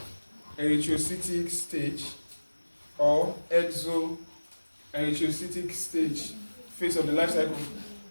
stage or exo-erythrocytic stage phase of the life cycle.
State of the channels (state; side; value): inverted; both; correlation -1.00